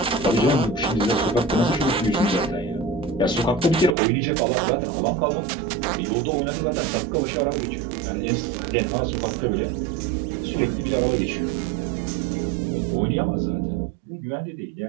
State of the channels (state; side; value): drops out; left; at 4.0 s